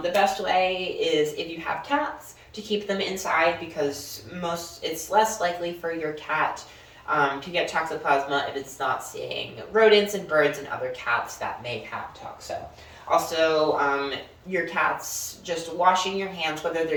the best way is if you have cats to keep them inside because it's less likely for your cat to get Toxoplasma if it's not seeing rodents and birds and other cats that may have toxo. Also, your cats just washing your hands, whether they're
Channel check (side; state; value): both; identical; correlation 1.00